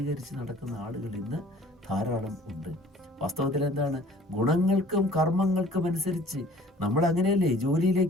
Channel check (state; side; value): normal; both; correlation 0.51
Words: നടക്കുന്ന ആളുകൾ ഇന്ന് ധാരാളം ഉണ്ട്. വാസ്തവത്തിൽ എന്താണ്? ഗുണങ്ങൾക്കും കർമ്മങ്ങൾക്കും അനുസരിച്ച് നമ്മൾ അങ്ങനെയല്ലേ